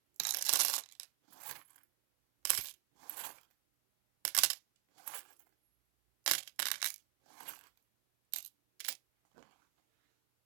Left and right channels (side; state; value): left; silent; 51 dB below the other